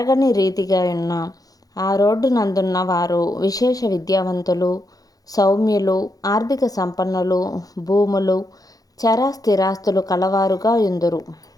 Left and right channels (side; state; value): right; late; 0.18 ms